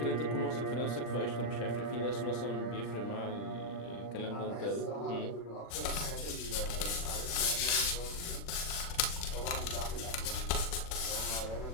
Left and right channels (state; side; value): late; right; 40 ms